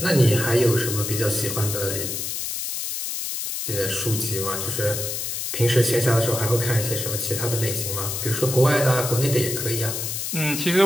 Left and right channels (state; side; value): noise; left; hiss, 3 dB below the sound